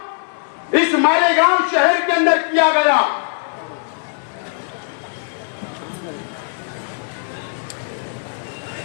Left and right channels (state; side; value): silent; right; 66 dB below the other